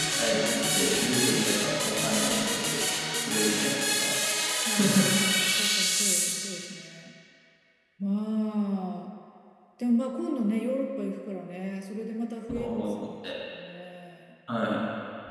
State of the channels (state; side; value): identical; both; correlation 1.00